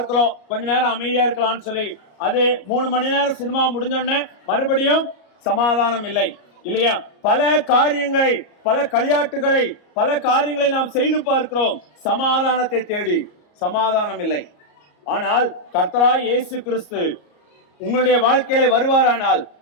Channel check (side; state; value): right; late; 33 ms